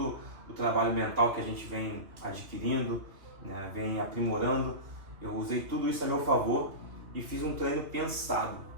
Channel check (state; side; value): late; left; 2.4 ms